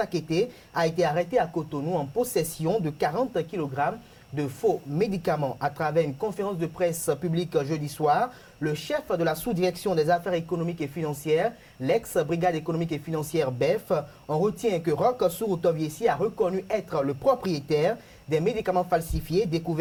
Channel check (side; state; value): both; identical; correlation 1.00